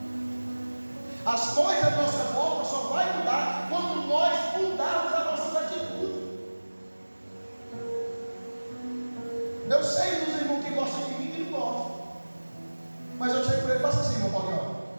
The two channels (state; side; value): inverted; both; correlation -1.00